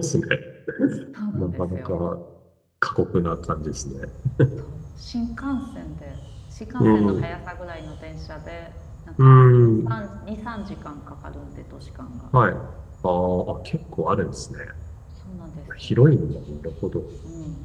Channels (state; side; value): identical; both; correlation 1.00